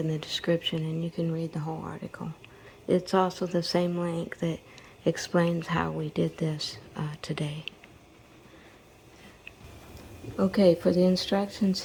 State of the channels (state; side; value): identical; both; correlation 1.00